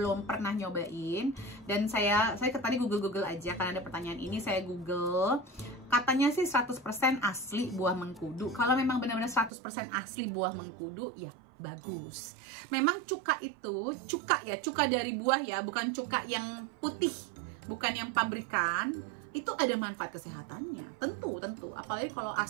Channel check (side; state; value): left; drops out; at 9.5 s